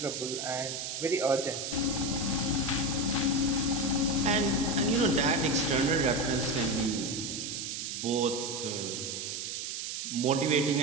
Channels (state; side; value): noise; right; hiss, 5 dB below the sound